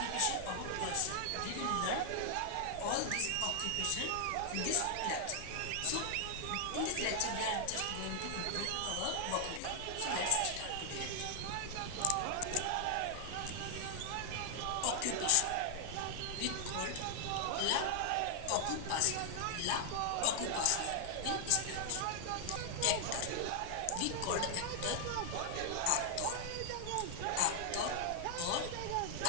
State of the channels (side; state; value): both; different; correlation 0.00